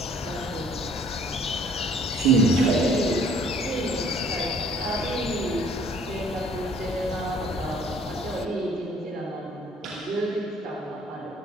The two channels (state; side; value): normal; both; correlation 0.57